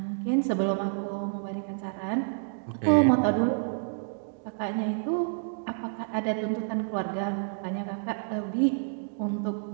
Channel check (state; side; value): silent; left; digital silence